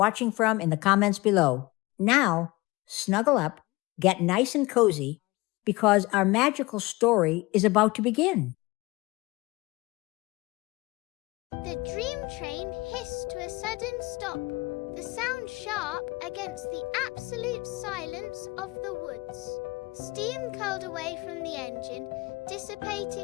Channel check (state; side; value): quieter; right; 22.2 dB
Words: from in the comments below. Now, snuggle up, get nice and cozy, because our magical story is about to begin. The dream train hissed to a sudden stop, the sound sharp against the absolute silence of the woods. Steam curled away from the engine,